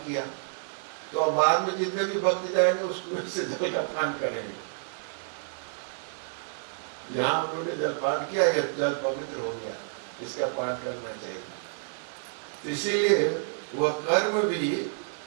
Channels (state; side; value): silent; left; 59 dB below the other